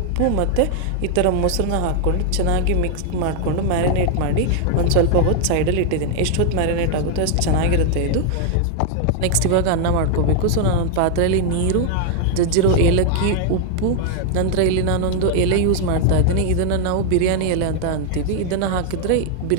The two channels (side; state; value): both; different; correlation 0.00